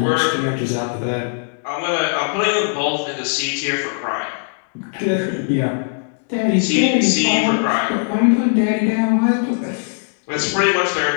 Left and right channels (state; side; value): silent; right; 66 dB below the other